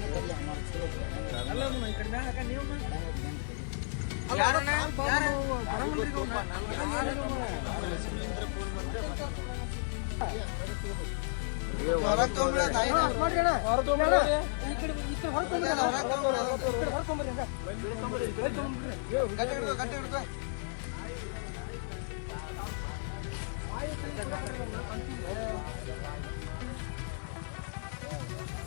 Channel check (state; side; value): silent; right; 56 dB below the other